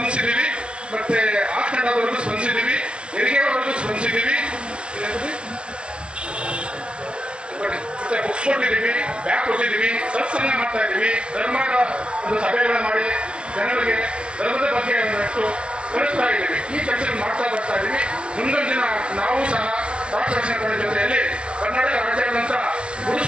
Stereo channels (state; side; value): late; left; 0.056 ms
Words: ಮತ್ತೆ ಆಸ್ಪೆಂಡವರೆಗೂ ಸ್ಪಂದಿಸಿದ್ದೀವಿ, ಹೆರಿಗೆವರೆಗೂ ಸ್ಪಂದಿಸಿದ್ದೀವಿ, ಬುಕ್ಸ್ ಕೊಟ್ಟಿದ್ದೀವಿ, ಬ್ಯಾಗ್ ಕೊಟ್ಟಿದ್ದೀವಿ, ಸತ್ಸಂಗ ಮಾಡ್ತಾ ಇದ್ದೀವಿ. ಧರ್ಮದ ಒಂದು ಸಭೆಗಳನ್ನ ಮಾಡಿ ಜನರಿಗೆ ಧರ್ಮದ ಬಗ್ಗೆ ಒಂದಷ್ಟು ಕಳಿಸ್ತಾ ಇದ್ದೀವಿ. ಈ ಕೆಲಸ ಮಾಡ್ತಾ ಬರ್ತಾ ಇದ್ದೀವಿ. ಮುಂದೊಂದು ದಿನ ನಾವು ಸಹ ರಾಷ್ಟ್ರ ಜೊತೆಯಲ್ಲಿ ಕರ್ನಾಟಕ ರಾಜ್ಯಾದ್ಯಂತ